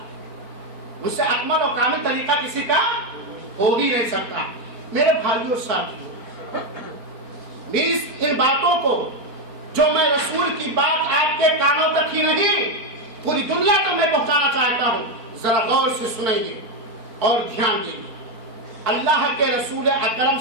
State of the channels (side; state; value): left; late; 4.4 ms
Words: ان سے اکمل اور کامل طریقہ کسی کا ہو ہی نہیں سکتا. میرے بھائیوں ساتھیوں، ان باتوں کو جو میں رسول کی بات آپ کے کانوں تک ہی نہیں پوری دنیا تک میں پہنچانا چاہتا ہوں، ذرا غور سے سنیں اور دھیان دیں. اللہ کے رسول اکرم